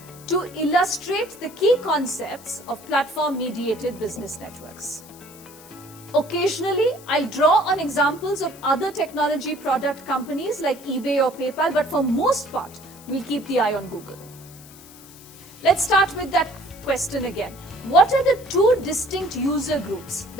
to illustrate the key concepts of platform-mediated business networks. Occasionally, I'll draw on examples of other technology product companies like eBay or PayPal, but for most part, we'll keep the eye on Google. Let's start with that question again. What are the two distinct user groups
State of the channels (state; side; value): noise; left; hiss, 21 dB below the sound